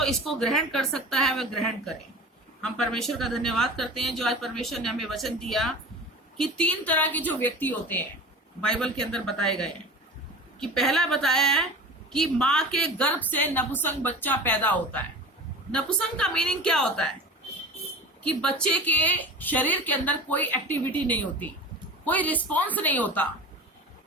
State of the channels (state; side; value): normal; both; correlation 0.35